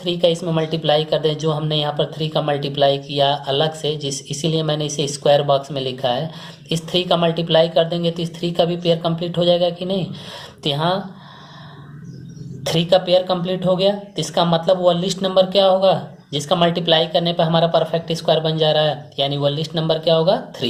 का इसमें मल्टीप्लाई कर दें, जो हमने यहाँ पर 3 का मल्टीप्लाई किया अलग से, इसीलिए मैंने इसे स्क्वायर बॉक्स में लिखा है। इस 3 का मल्टीप्लाई कर देंगे तो इस 3 का भी पेयर कंप्लीट हो जाएगा कि नहीं। तो यहाँ 3 का पेयर कंप्लीट हो गया, तो इसका मतलब वह लिस्ट नंबर क्या होगा, जिसका मल्टीप्लाई करने पर हमारा परफेक्ट स्क्वायर बन जा रहा है, यानी वो लिस्ट नंबर क्या होगा,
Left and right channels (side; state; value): both; identical; correlation 1.00